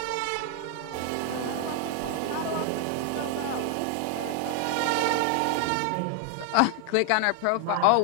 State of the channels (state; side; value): different; both; correlation 0.00